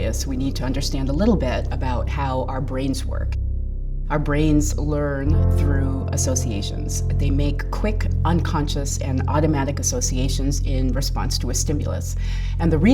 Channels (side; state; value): both; identical; correlation 1.00